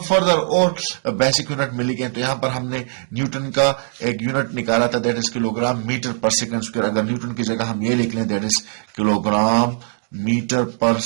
فردر اور بیسک یونٹ میں لکھیں تو یہاں پر ہم نے نیوٹن کا ایک یونٹ نکالا تھا، that is kilo gram metre per second square. اگر نیوٹن کی جگہ ہم یہ لکھ لیں that is kilo gram metre per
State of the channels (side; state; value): left; silent; 59 dB below the other